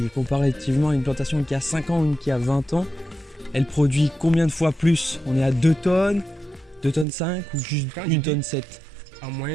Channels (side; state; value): left; drops out; at 7.1 s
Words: est comparativement à une plantation qui a 5 ans ou une qui a 20 ans, elle produit combien de fois plus? On est à 2 tonnes, 2 tonnes 5 ou juste Quand 1 tonne 7? En